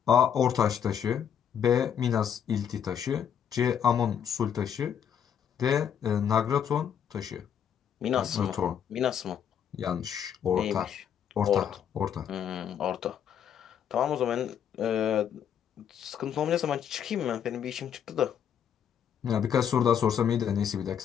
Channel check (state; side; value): quieter; right; 8.5 dB